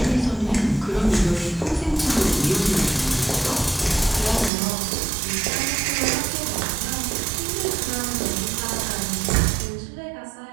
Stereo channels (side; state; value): left; drops out; at 4.5 s